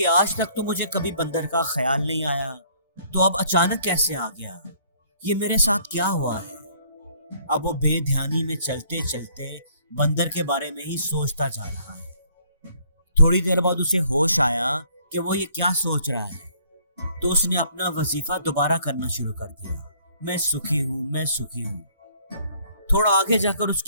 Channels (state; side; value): inverted; both; correlation -0.62